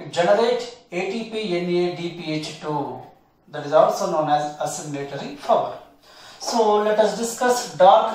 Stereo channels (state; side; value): identical; both; correlation 1.00